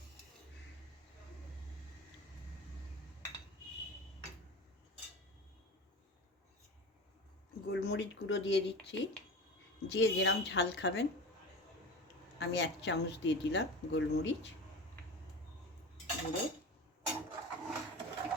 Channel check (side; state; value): both; normal; correlation 0.31